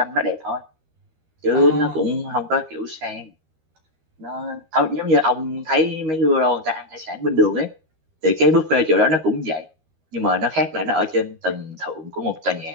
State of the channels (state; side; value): late; left; 13 ms